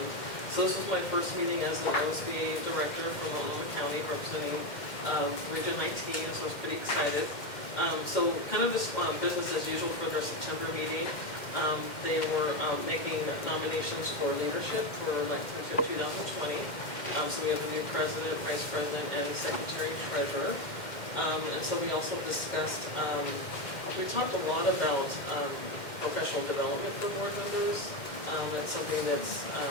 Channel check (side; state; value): right; late; 2.1 ms